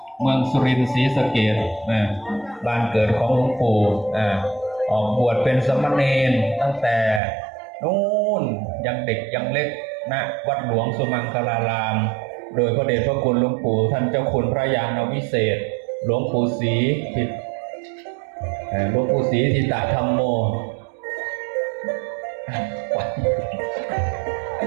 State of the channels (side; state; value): left; drops out; at 7.2 s